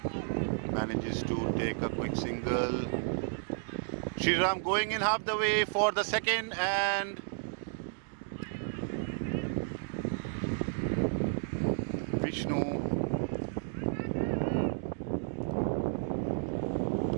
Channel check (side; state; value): left; silent; digital silence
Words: Manages to take a quick single. Shriram going in half the way for the second, and Vishnu